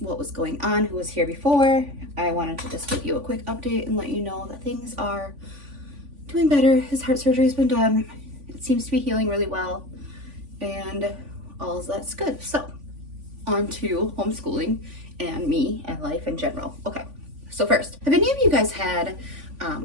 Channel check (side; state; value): left; late; 3.5 ms